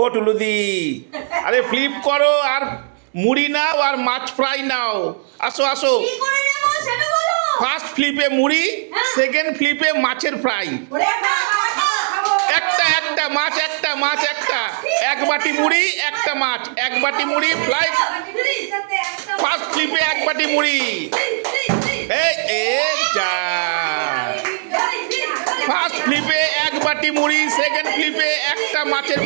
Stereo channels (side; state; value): left; silent; digital silence